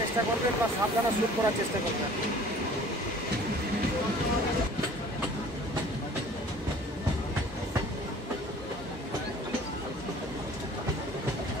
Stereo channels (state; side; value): normal; both; correlation 0.49